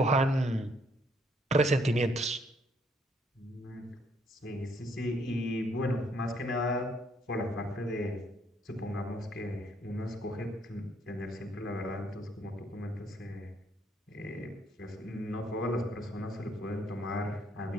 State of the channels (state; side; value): normal; both; correlation 0.68